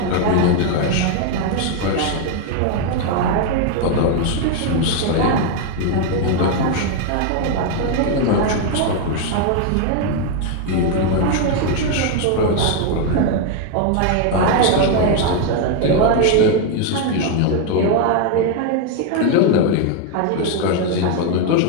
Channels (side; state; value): both; different; correlation 0.01